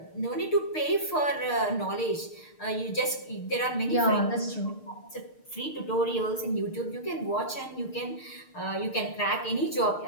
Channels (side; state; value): right; late; 6.6 ms